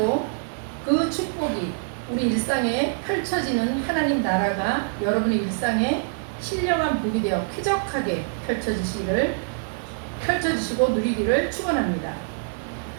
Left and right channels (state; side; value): silent; left; 62 dB below the other